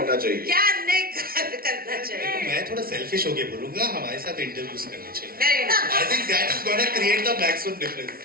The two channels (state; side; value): late; left; 0.43 ms